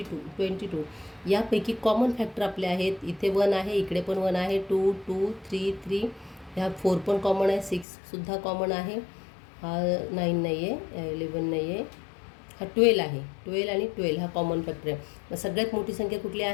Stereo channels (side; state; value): right; drops out; at 7.9 s